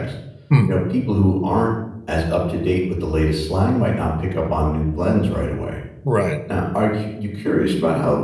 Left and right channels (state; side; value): identical; both; correlation 1.00